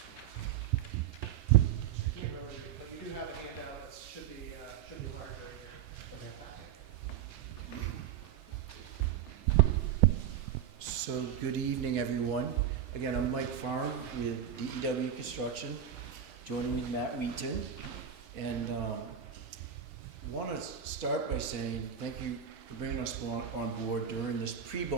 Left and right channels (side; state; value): left; quieter; 9.2 dB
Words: I can't remember, but you do have a handout that should be larger here. So good evening, everyone. Again, I'm Mike Farm with DEW Construction. Joining me, Matt Wheaton. And want to start by saying thank you for bringing us on board during this